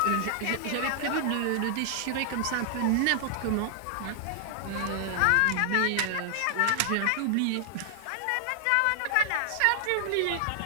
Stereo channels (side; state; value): both; different; correlation 0.00